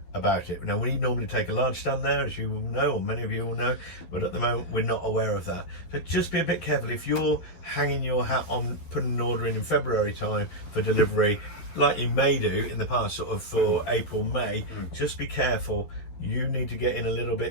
about it. Now, we normally take a large stand there, as you will know, or many of you will know, but at the moment we're not aware of that. So just be a bit careful. If you're hanging your hat on putting an order in February time for delivery, like you may do in the past, sort of for April, May, just be careful. You need to get in a little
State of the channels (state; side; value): late; right; 12 ms